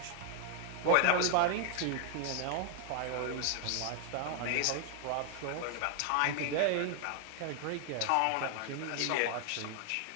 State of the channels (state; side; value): different; both; correlation 0.00